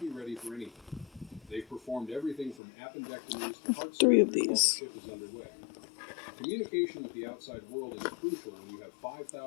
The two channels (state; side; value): drops out; right; at 2.6 s